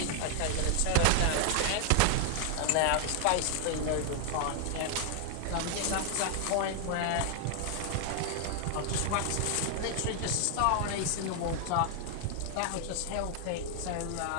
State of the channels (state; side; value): different; both; correlation 0.00